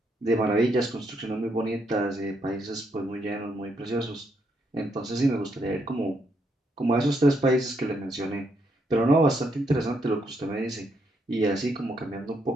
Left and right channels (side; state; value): both; normal; correlation 0.76